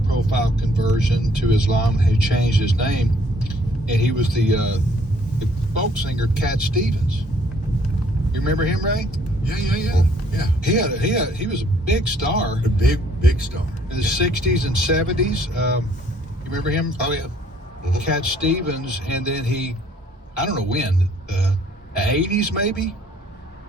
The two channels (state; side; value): normal; both; correlation 0.62